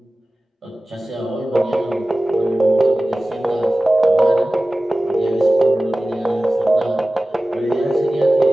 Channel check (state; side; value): normal; both; correlation 0.97